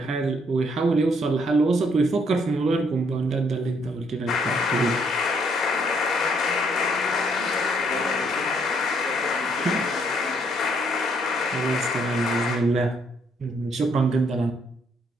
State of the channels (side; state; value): both; normal; correlation 0.69